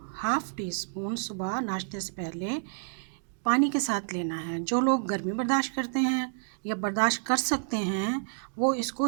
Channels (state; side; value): silent; left; digital silence